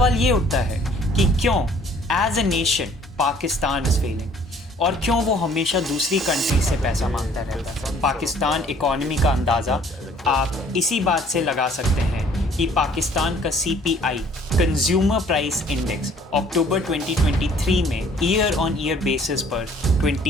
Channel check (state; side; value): normal; both; correlation 0.57